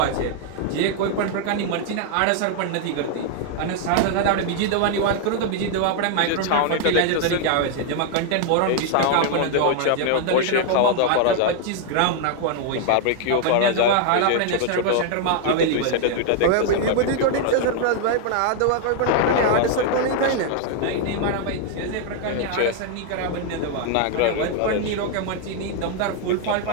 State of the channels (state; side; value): different; both; correlation 0.00